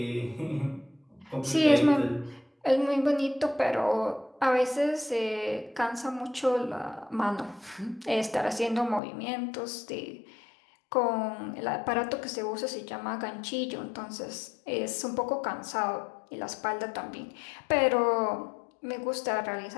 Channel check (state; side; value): drops out; right; at 9.0 s